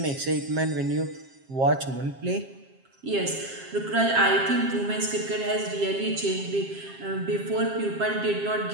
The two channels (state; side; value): late; left; 7.5 ms